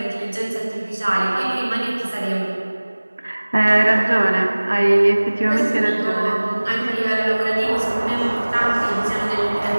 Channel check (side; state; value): both; inverted; correlation -1.00